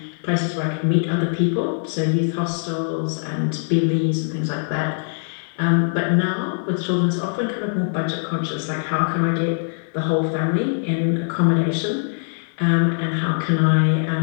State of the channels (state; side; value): silent; right; digital silence